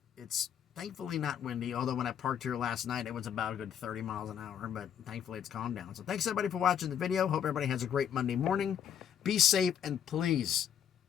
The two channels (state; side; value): quieter; right; 9.0 dB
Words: It's thankfully not windy, although when I parked here last night, it was about a good 30 miles an hour, but thankfully it's calmed down. So thanks everybody for watching the video. Hope everybody has a great Monday morning. Be safe, and please